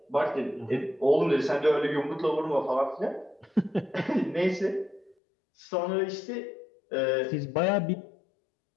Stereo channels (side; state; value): right; drops out; at 5.2 s